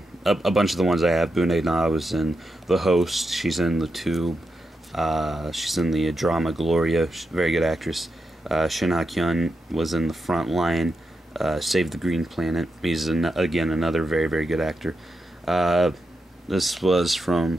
A bunch of the ones I have. Bu Dae-na was in The Host. She's in The Tube. She's in the drama Gloria. She's a very good actress. Shin Ha-kyun was in The Front Line, Save the Green Planet. He's, again, another very, very good actor. This was from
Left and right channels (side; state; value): both; normal; correlation 0.86